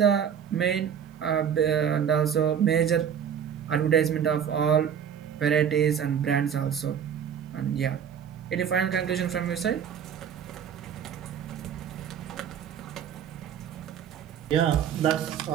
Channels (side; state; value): left; quieter; 8.3 dB